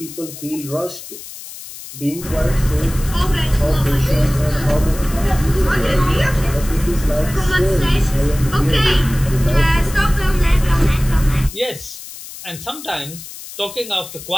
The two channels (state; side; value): noise; left; hiss, 14 dB below the sound